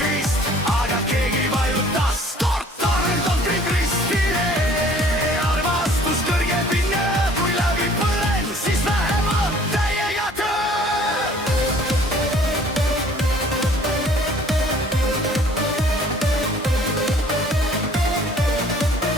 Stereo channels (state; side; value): normal; both; correlation 0.54